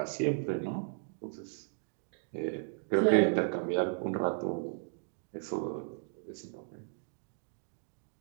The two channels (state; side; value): silent; left; 54 dB below the other